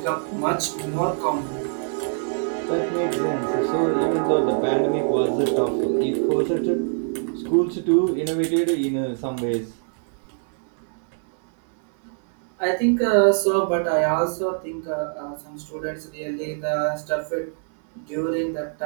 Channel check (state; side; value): silent; left; 63 dB below the other